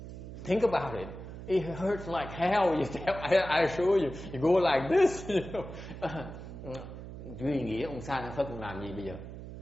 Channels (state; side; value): noise; right; hum, 11 dB below the sound